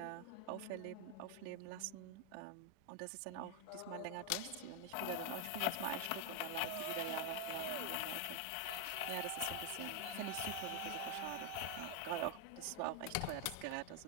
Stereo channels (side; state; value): both; different; correlation 0.00